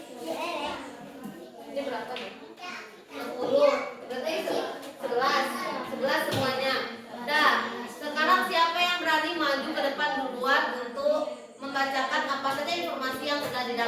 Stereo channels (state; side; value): identical; both; correlation 1.00